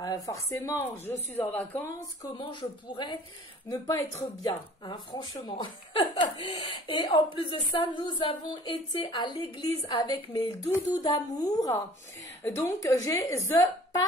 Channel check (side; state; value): both; normal; correlation 0.50